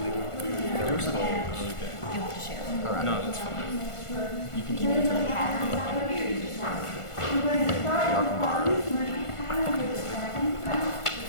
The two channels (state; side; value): late; right; 1.5 ms